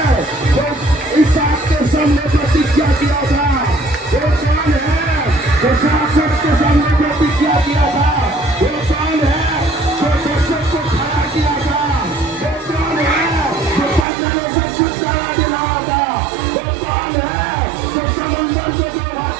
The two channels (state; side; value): drops out; left; at 14.1 s